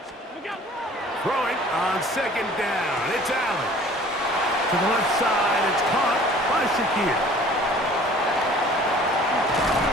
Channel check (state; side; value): normal; both; correlation 0.50